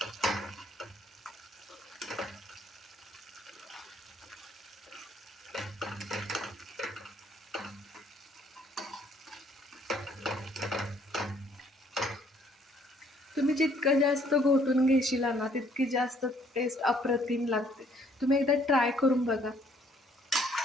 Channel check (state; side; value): normal; both; correlation 0.63